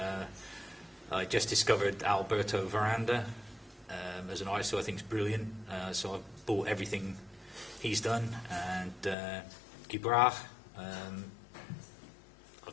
I just discovered Alberto Veranda as an artist who I think is brilliant. So I've bought everything he's done, and Guibra. I've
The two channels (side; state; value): right; drops out; at 9.2 s